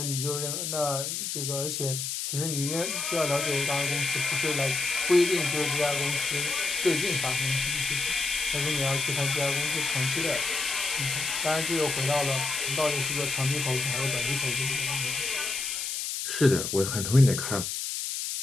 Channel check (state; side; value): noise; left; hiss, 3 dB below the sound